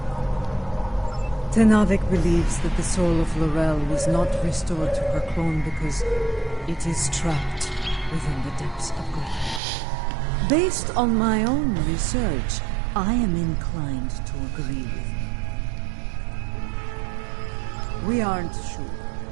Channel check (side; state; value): left; drops out; at 9.6 s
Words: Tenavik believes that the soul of Lorel was not restored to her clone because it is trapped within the depths of grief. Based on my own research, I am inclined to agree with you. We aren't sure.